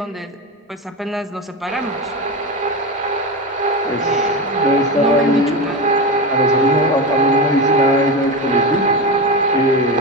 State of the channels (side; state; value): both; normal; correlation 0.20